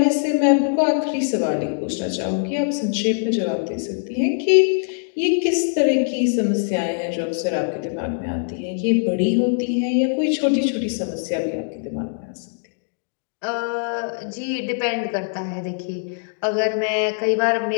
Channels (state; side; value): silent; right; digital silence